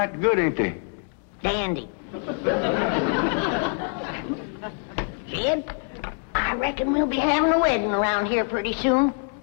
good, ain't they? Dandy. Jed, I reckon we'll be having a wedding around here pretty soon.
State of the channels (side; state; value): right; quieter; 39.3 dB